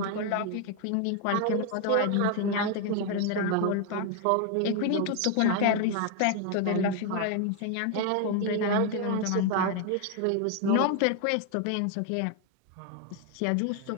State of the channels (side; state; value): both; different; correlation 0.01